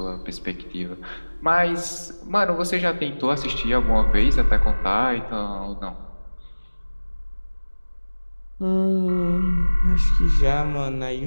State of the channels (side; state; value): both; inverted; correlation -1.00